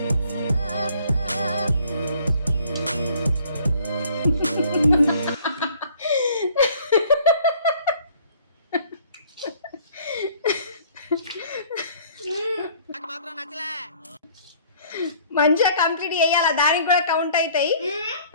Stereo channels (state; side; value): inverted; both; correlation -0.56